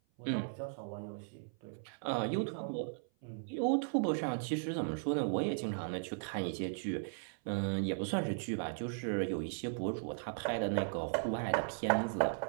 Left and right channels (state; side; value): silent; left; 53 dB below the other